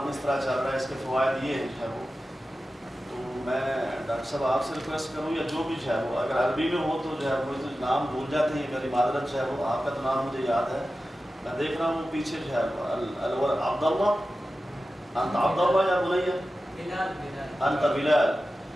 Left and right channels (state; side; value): normal; both; correlation 0.94